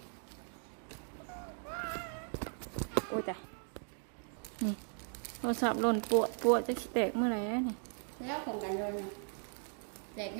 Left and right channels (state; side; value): silent; left; 53 dB below the other